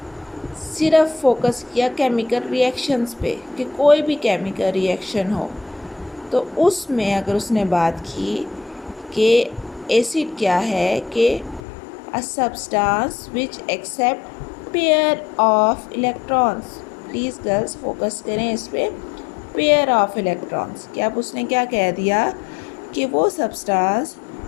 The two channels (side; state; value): right; drops out; at 11.6 s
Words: सिर्फ फोकस किया केमिकल रिएक्शंस पे कि कोई भी केमिकल रिएक्शन हो तो उसमें अगर उसने बात की कि एसिड क्या है कि a substance which accept pair of electrons. Please girls focus करें इस पे, पेयर ऑफ इलेक्ट्रॉन्स। कि अब उसने क्या कह दिया कि वो सब्सटेंस